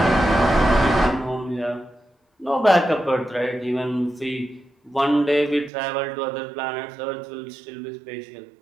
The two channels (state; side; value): drops out; left; at 5.7 s